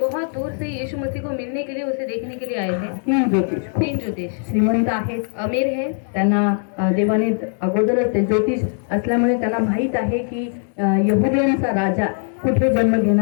दूर से यीशु मसीह को मिलने के लिए, उसे देखने के लिए आए थे. तीन ज्योतिष श्रीमंत आहेत, अमीर है. त्यांना देवाने अगोदरच ते ज्योतिष असल्यामुळे त्यांना माहीत आहे की यहुद्यांचा राजा कुठे जन्म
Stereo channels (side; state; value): right; silent; 55 dB below the other